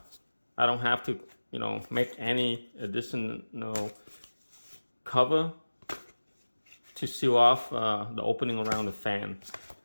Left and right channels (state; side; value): inverted; both; correlation -1.00